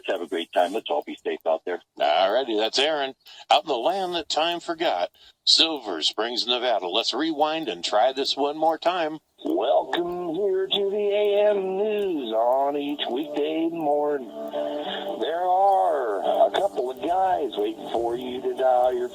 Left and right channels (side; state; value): both; identical; correlation 1.00